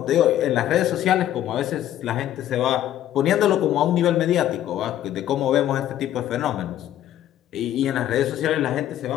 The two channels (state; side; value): quieter; right; 12.1 dB